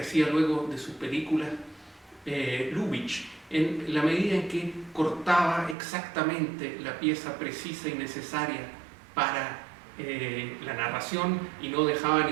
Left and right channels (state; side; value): drops out; left; at 5.8 s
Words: luego de sus películas Lubitsch, en la medida en que cortaba exactamente la pieza precisa y necesaria para la narración y no dejaba